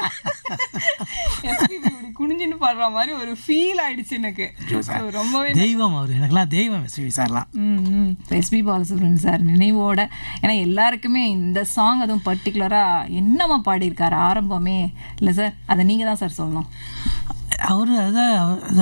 எஸ்பிபி அப்படி குனிஞ்சுன்னு பாடுற மாதிரி ஒரு ஃபீல் ஆயிடுச்சு எனக்கு. ரொம்பவே தெய்வம் அவர், எனக்குலாம் தெய்வம் எஸ்பிபி சார்லாம். எஸ்பி பாலசுப்ரமணியன் சார் நினைவோட, ஏன்னா எல்லாருக்குமே இந்த சாங் அதுவும் பர்டிகுலராக என்னமா பாடியிருக்காரு ஆரம்பமே இல்லை சார், அதை நீங்கள் தான் சார் சொல்லணும். அவர்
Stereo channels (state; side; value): inverted; both; correlation -1.00